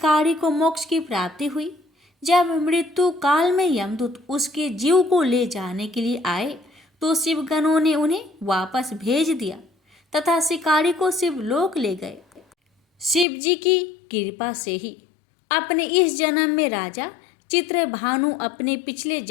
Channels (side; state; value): right; drops out; at 13.2 s